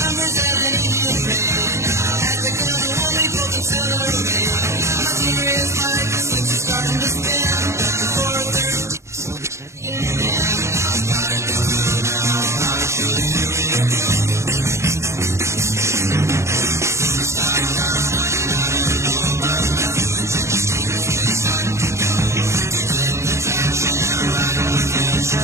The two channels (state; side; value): late; left; 0.14 ms